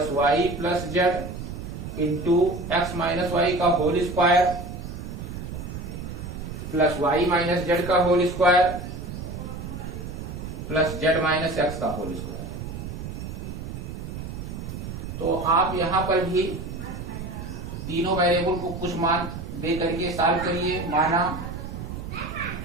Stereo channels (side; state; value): right; noise; rumble, 8 dB below the sound